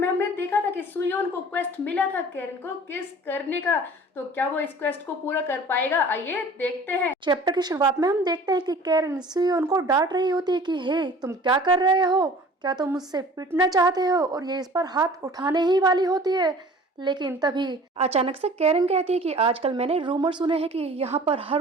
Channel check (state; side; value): normal; both; correlation 0.46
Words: हमने देखा था कि सुयोन को क्वेस्ट मिला था कैरन को किस करने का। तो क्या वो इस क्वेस्ट को पूरा कर पाएगा? आइए देखते हैं। चैप्टर की शुरुआत में हम देखते हैं कि कैरन सुयोन को डांट रही होती है कि हे तुम क्या कर रहे हो, क्या तुम मुझसे पिटना चाहते हो, और ये इस पर हाथ उठाने ही वाली होती है। लेकिन तभी अचानक से कैरन कहती है कि आजकल मैंने रूमर सुने हैं कि यहाँ पर हर